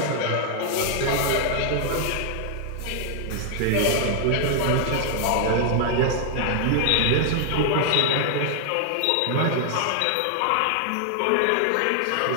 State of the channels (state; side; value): different; both; correlation -0.01